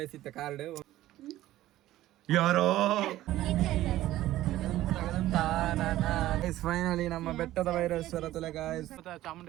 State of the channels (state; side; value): quieter; left; 14.9 dB